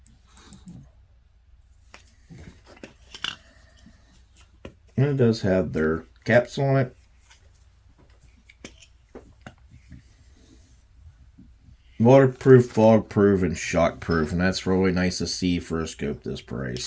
And it does have their caps on it. Waterproof, fog-proof, and shock-proof. And that's really nice to see for a scope this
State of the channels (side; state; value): both; identical; correlation 1.00